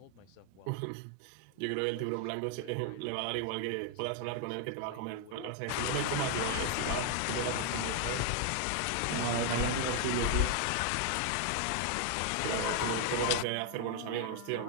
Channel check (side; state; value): both; different; correlation 0.00